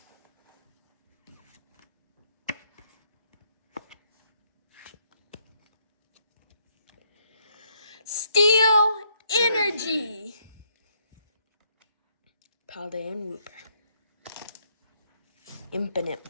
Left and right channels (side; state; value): both; inverted; correlation -0.72